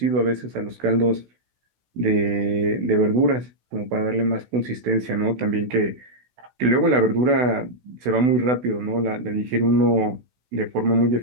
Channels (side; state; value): left; late; 16 ms